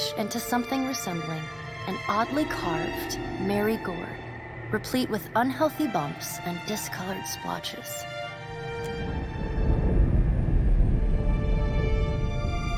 into something resembling an oddly carved, merry gourd, replete with unhealthy bumps and discolored splotches.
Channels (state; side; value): identical; both; correlation 1.00